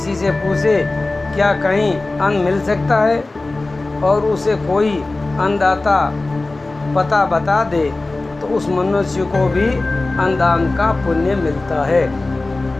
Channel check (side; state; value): right; quieter; 3.1 dB